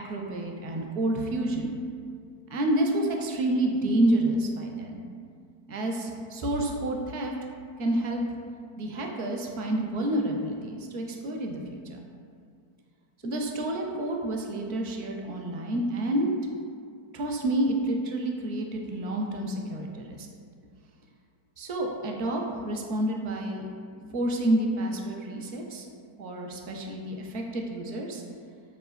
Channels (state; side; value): late; right; 4.5 ms